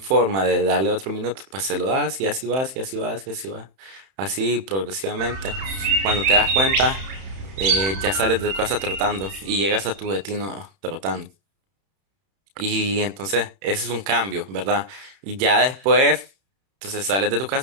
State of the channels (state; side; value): late; left; 31 ms